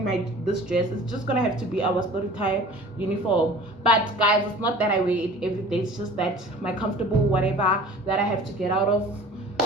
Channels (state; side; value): normal; both; correlation 0.44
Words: this dress. It's just gonna have to be our story time uniform. But guys, it's not that I wear it every day. It's just that my comfortable whatever that I have to get out of